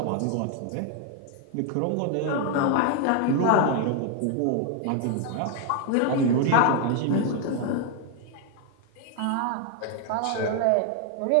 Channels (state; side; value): different; both; correlation 0.00